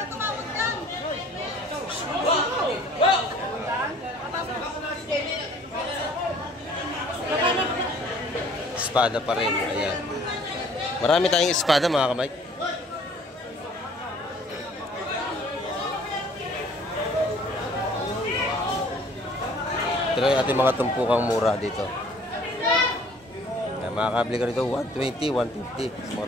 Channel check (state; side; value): normal; both; correlation 0.54